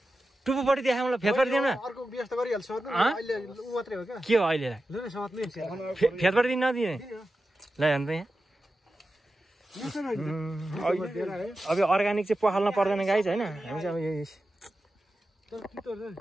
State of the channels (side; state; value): both; normal; correlation 0.92